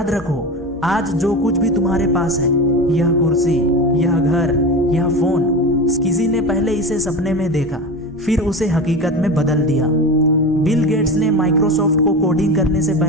रखो, आज जो कुछ भी तुम्हारे पास है, यह कुर्सी, यह घर, यह फोन, किसी ने पहले इसे सपने में देखा, फिर उसे हकीकत में बदल दिया। बिल गेट्स ने माइक्रोसॉफ्ट को कोडिंग करने से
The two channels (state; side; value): normal; both; correlation 0.26